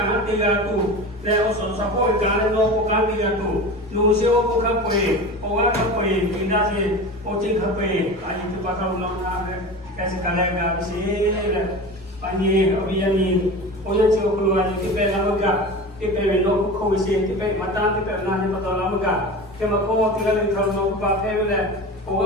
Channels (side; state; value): both; normal; correlation 0.31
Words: tiga tu. Le osot sapo gale no ko kan tiga tu. Nu se o ko ka poe. O ga ka poe pindah se o cing ka poe. Aji tu pakau no na kaise kala gamse le. Pani obiyani oya se o keluar ni pe na ga. Kita belok kau isi, kita mata kita nak ni betul lama kan? Kita kau tinggal di dalam nak buat apa le?